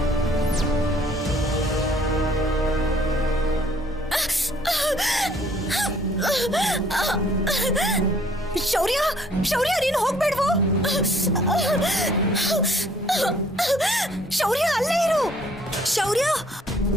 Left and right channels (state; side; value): normal; both; correlation 0.60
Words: ಶೌರ್ಯ! ಶೌರ್ಯ, ನೀನು ಹೋಗ್ಬೇಡ್ವೋ? ಶೌರ್ಯ, ಅಲ್ಲೇ ಇರು. ಶೌರ್ಯ!